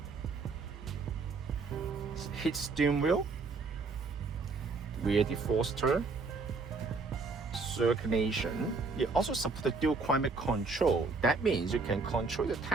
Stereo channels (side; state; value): left; quieter; 4.2 dB